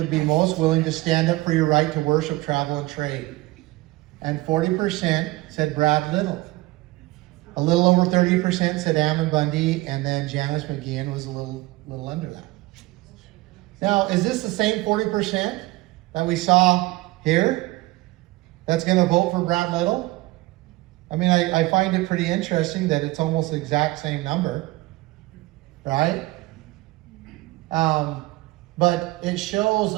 be most willing to stand up for your right to worship, travel, and trade? And 40% said Brad Little. A little over 30% said Ammon Bundy, and then Janice McGeehan was a little under that. Now, is this the same 40% that we saw here that's going to vote for Brad Little? I mean, I find it pretty interesting that it's almost the exact same number, right? But it shows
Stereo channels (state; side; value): quieter; left; 20.1 dB